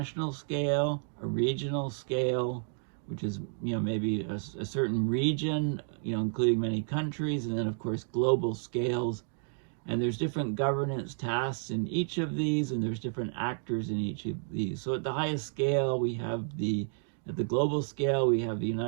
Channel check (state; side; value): silent; left; 57 dB below the other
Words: scale, a regional scale, which is maybe a certain region, including many countries, and then of course global scales. And there's different governance tasks in each of these, and there's different actors in each of these. So at the highest scale, at the global scale, we have the